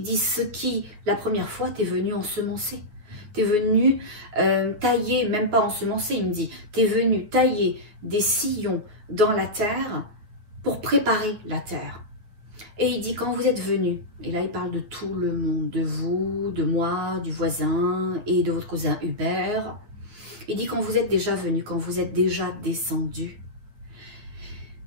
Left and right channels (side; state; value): left; late; 9.3 ms